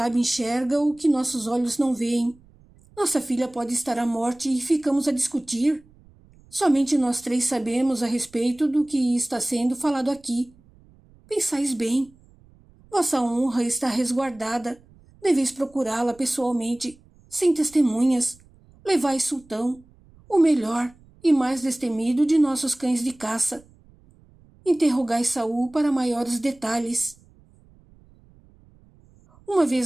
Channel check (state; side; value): noise; right; rumble, 28 dB below the sound